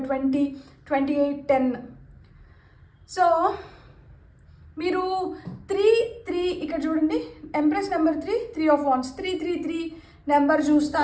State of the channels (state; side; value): identical; both; correlation 1.00